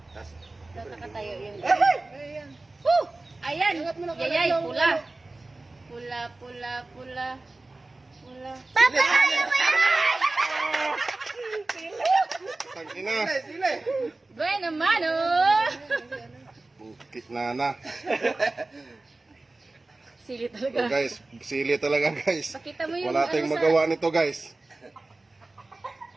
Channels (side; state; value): left; quieter; 3.1 dB